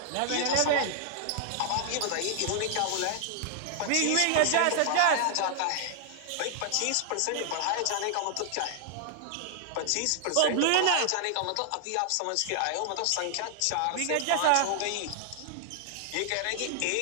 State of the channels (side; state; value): both; different; correlation 0.00